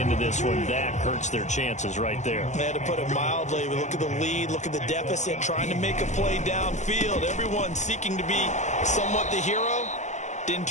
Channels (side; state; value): right; late; 0.34 ms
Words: this one, that hurts their chances right there. They had to put it mildly. Look at the lead, look at the deficit, trying to make a play downfield. Everyone seeking to be somewhat the hero. Didn't